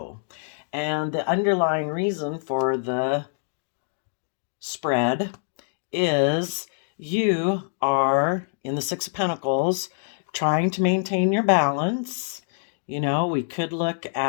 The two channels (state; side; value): silent; right; digital silence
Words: And the underlying reason for the spread is you are in the Six of Pentacles trying to maintain your balance. We could look